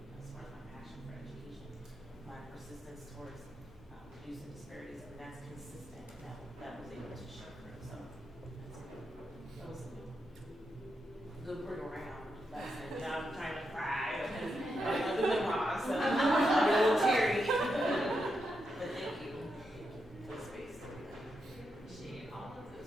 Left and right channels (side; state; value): both; normal; correlation 0.84